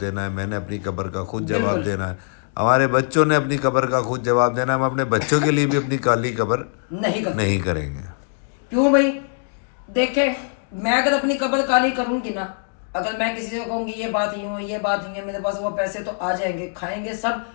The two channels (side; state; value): right; silent; digital silence